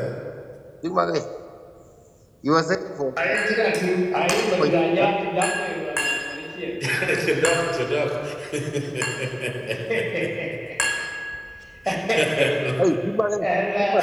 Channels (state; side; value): identical; both; correlation 1.00